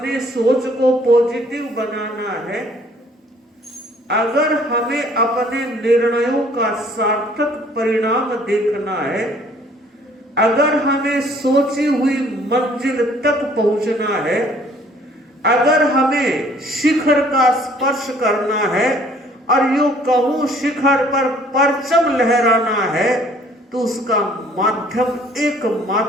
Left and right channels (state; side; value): normal; both; correlation 0.58